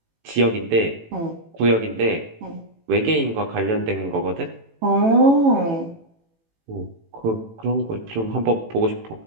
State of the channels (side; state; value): left; late; 18 ms